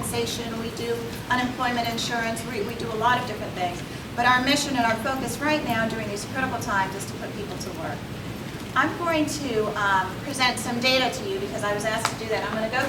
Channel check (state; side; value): identical; both; correlation 1.00